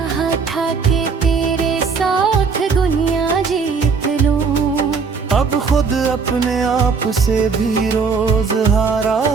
था कि तेरे साथ दुनिया जीत लूं अब खुद अपने आप से भी रोज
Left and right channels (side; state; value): left; quieter; 5.2 dB